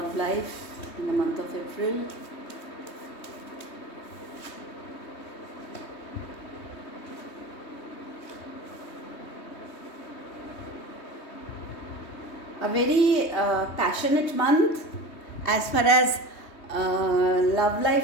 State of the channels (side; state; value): right; late; 3.2 ms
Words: life in the month of April? A very passionate month as far as love